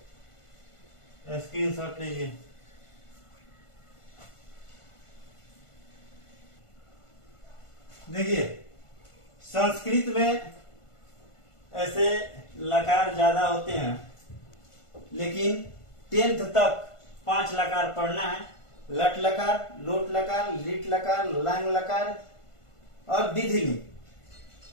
स्क्रीनशॉट लीजिए। देखिए संस्कृत में ऐसे लकार ज्यादा होते हैं, लेकिन 10th तक 5 लकार पढ़ना है। लट लकार, लोट लकार, लिट लकार, लंग लकार और विधिलिंग।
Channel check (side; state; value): right; late; 1.5 ms